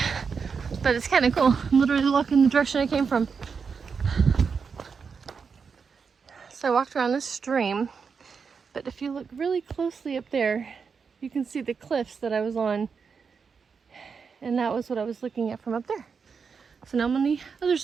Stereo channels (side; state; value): left; quieter; 5.7 dB